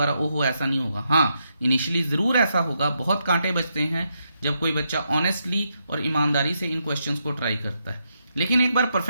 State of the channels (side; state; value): both; inverted; correlation -0.81